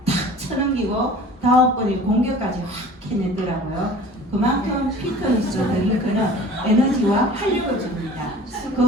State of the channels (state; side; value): normal; both; correlation 0.44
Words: 탁 쳐넘기고 다음번에 공격까지 확 해내더라고요. 그만큼 피트니스 드링크는 에너지와 활력을 줍니다.